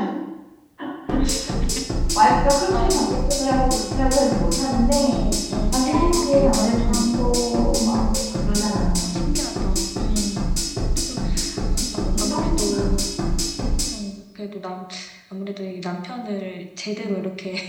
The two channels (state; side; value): identical; both; correlation 1.00